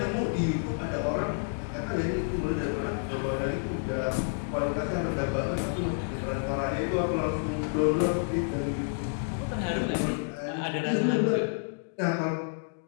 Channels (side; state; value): right; silent; digital silence